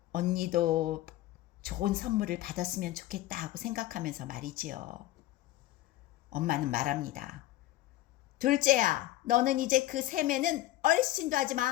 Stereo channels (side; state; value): right; quieter; 15.2 dB